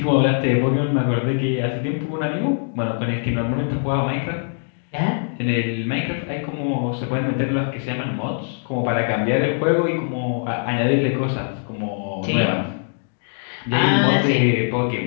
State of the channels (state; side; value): silent; right; 64 dB below the other